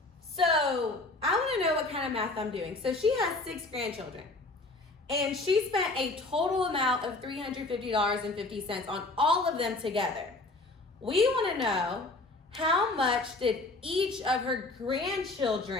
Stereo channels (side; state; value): right; quieter; 3.1 dB